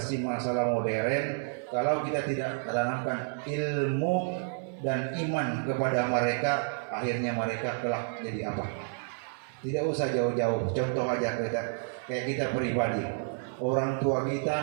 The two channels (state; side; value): silent; left; digital silence